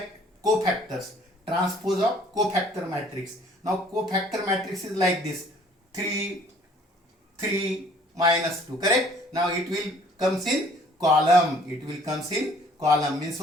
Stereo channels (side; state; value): both; normal; correlation 0.57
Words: cofactors. Transpose of cofactor matrix. Now cofactor matrix is like this. 3, 3, minus 2. Correct? Now it will comes in column. Means